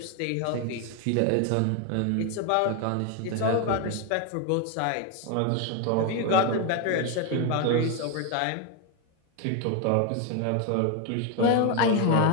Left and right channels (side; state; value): both; different; correlation 0.01